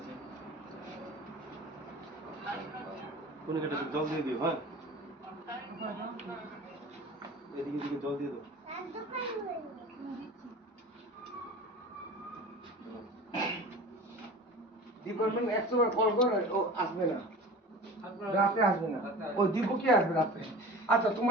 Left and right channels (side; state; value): both; normal; correlation 0.38